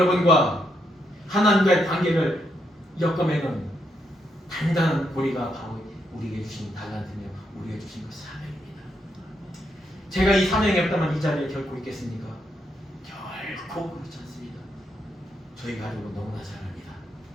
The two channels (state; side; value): normal; both; correlation 0.79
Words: 하나님과의 관계를 엮어매는 단단한 고리가 바로 우리에게 주신 달란트며 우리에게 주신 그 사명입니다. 제가 이 사명이 없다면 이 자리에 결코 있겠습니까? 결코 그렇지 않습니다. 저희 가족은 너무나 잘 압니다.